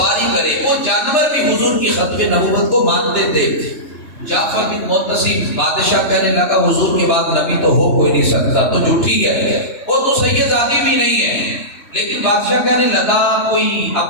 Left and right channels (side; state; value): right; late; 2.9 ms